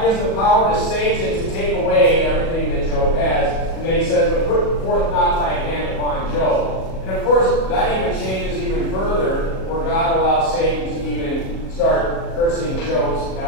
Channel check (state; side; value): late; right; 37 ms